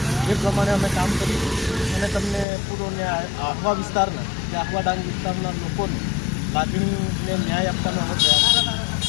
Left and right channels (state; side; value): drops out; right; at 2.5 s